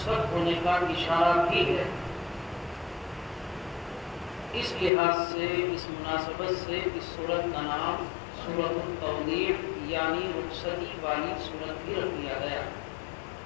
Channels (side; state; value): right; drops out; at 4.9 s